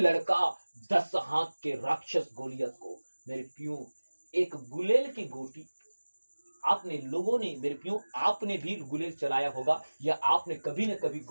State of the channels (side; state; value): both; inverted; correlation -1.00